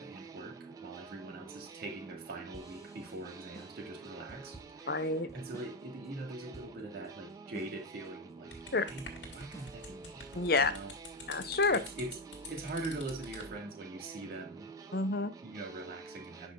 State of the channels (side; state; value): both; normal; correlation 0.14